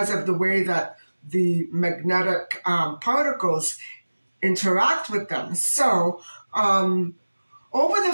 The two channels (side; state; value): both; inverted; correlation -1.00